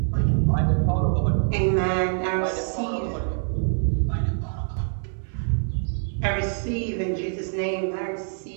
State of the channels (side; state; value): left; silent; digital silence